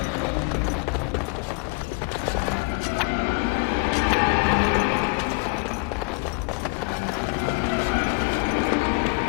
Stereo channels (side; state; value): right; quieter; 28.9 dB